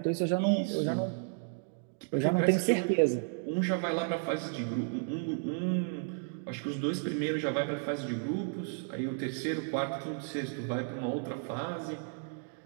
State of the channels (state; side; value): silent; left; 56 dB below the other